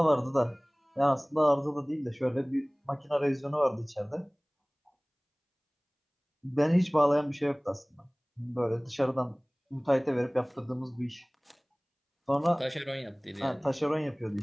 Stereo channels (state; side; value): identical; both; correlation 1.00